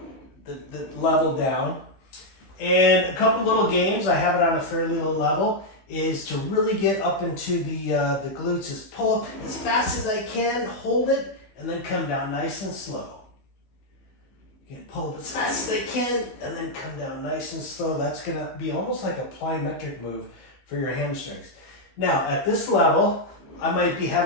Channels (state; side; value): late; right; 15 ms